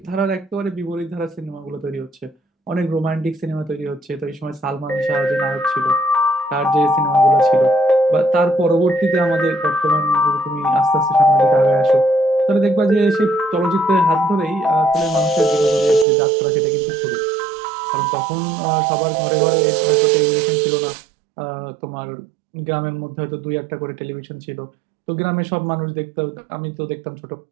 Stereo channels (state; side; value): drops out; left; at 16.1 s